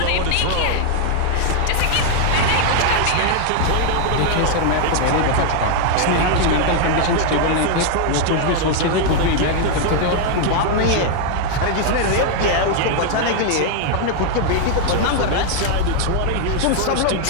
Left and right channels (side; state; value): both; different; correlation 0.00